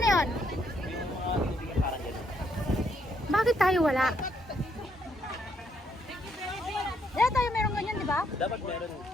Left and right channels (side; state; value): both; normal; correlation 0.73